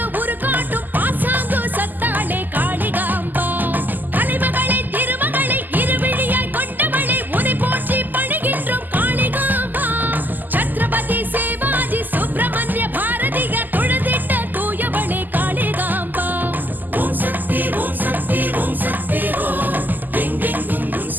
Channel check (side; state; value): left; late; 0.086 ms